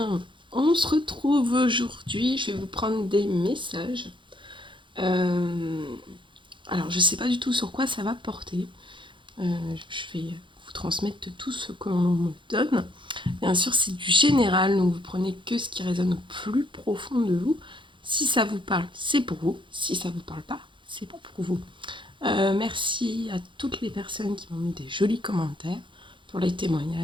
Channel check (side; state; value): left; late; 0.24 ms